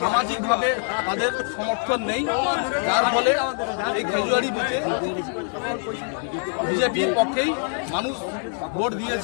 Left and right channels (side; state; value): right; silent; 55 dB below the other